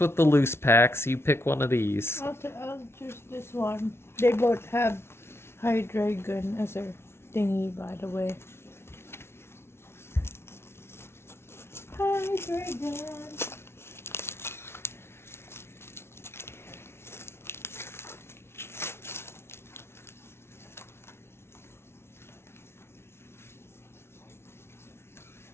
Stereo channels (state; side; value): late; right; 0.12 ms